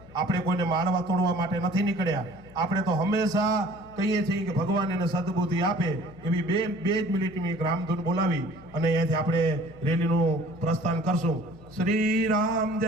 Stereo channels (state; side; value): noise; left; hum, 22 dB below the sound